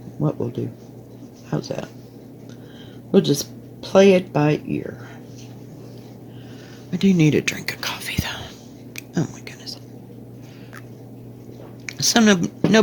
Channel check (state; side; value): identical; both; correlation 1.00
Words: what we'll do. How's that? We'll just play it by ear. I do need a drink of coffee, though. Oh, my goodness. So, no